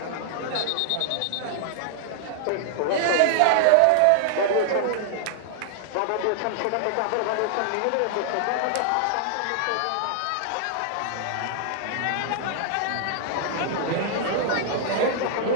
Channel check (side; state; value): both; different; correlation -0.01